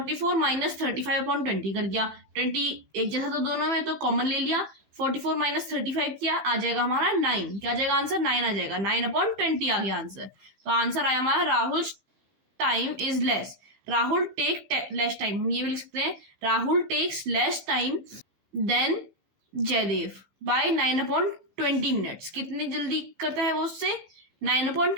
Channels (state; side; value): late; left; 15 ms